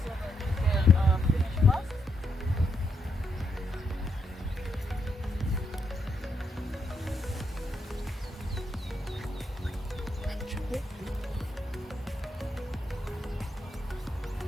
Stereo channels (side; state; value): both; normal; correlation 0.79